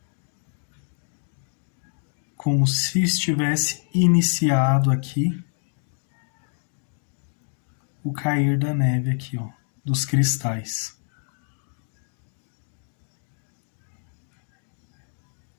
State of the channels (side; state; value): right; silent; 55 dB below the other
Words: Como se estivesse iniciado aqui o cair da neve aqui, ó, dos cristais.